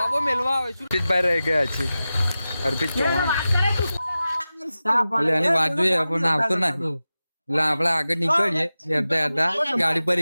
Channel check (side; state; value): both; inverted; correlation -0.94